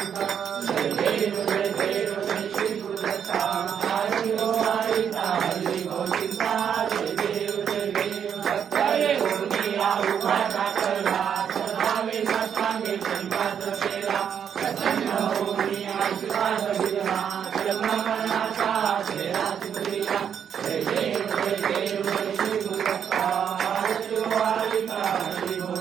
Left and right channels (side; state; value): left; quieter; 8.2 dB